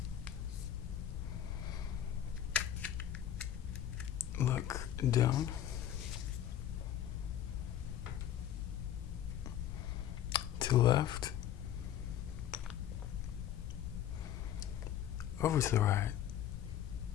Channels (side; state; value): right; quieter; 10.9 dB